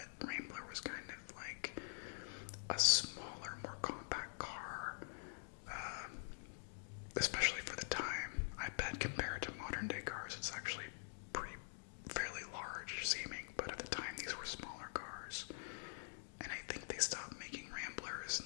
Rambler was kind of like a smaller, more compact car, especially for the time. I bet compared to modern day cars, it's actually fairly large seeming, but at the time these were smaller cars. And I think they stopped making Ramblers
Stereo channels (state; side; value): silent; right; digital silence